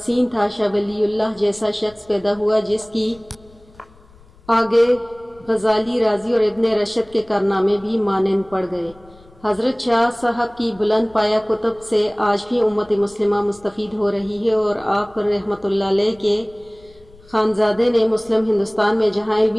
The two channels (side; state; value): left; noise; rumble, 26 dB below the sound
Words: تھا، شاہ ولی اللہ جیسا شخص پیدا ہوا جس کی آگے غزالی، رازی اور ابن رشد کے کارنامے بھی مانند پڑ گئے۔ حضرت شاہ صاحب کی بلند پایہ کتب سے آج بھی امت مسلمہ مستفید ہو رہی ہے، اور آپ رحمۃ اللہ علیہ کے خانزادے نے مسلم ہندوستان میں جہاں